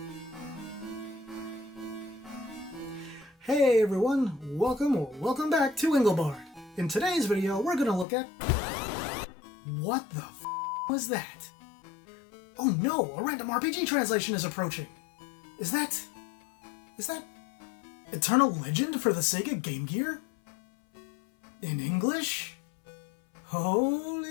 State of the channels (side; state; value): right; drops out; at 8.1 s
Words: Hey everyone, welcome back to Engelbart. In today's video, we're gonna look at... What the f*** was that? Oh no, a random RPG translation is approaching. Is that Eternal Legend for the Sega Game Gear? In English?